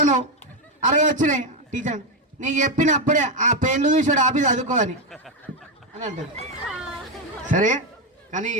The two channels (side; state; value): both; normal; correlation 0.07